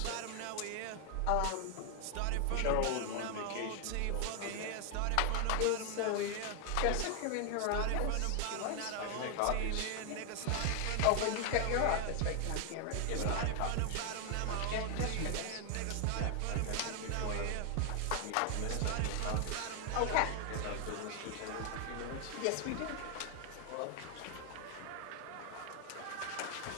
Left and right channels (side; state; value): both; different; correlation 0.00